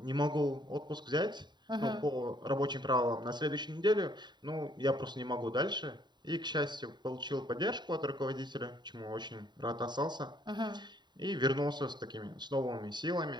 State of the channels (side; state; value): left; late; 0.21 ms